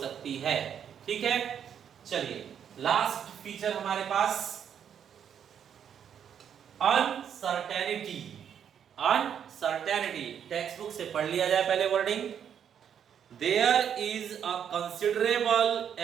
है। ठीक है, चलिए लास्ट फीचर हमारे पास अनसर्टेनिटी। अनसर्टेनिटी टेक्स्ट बुक से पढ़ लिया जाए पहले wording. There is a considerable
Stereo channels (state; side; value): quieter; left; 8.5 dB